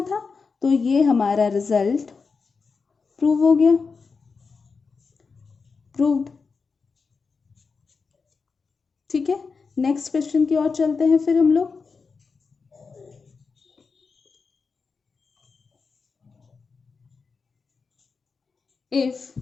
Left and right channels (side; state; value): right; quieter; 4.9 dB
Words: था, तो ये हमारा रिजल्ट प्रूव हो गया, प्रूव्ड। ठीक है, नेक्स्ट क्वेश्चन की ओर चलते हैं फिर हम लोग। If